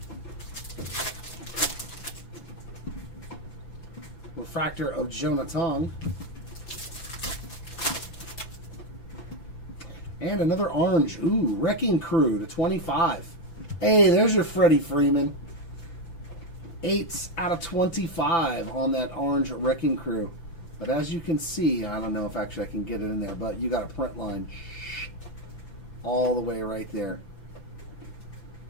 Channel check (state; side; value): late; right; 6.0 ms